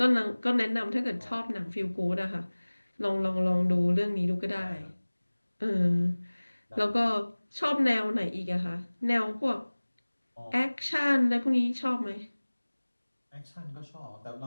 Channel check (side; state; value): both; inverted; correlation -1.00